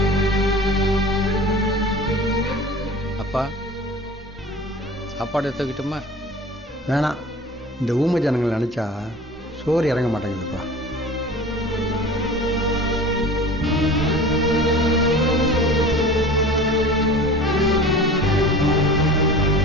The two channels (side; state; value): both; normal; correlation 0.39